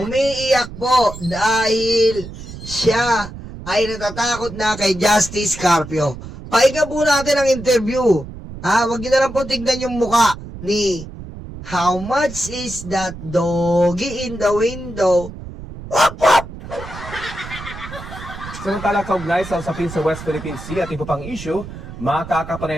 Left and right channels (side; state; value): right; noise; rumble, 12 dB below the sound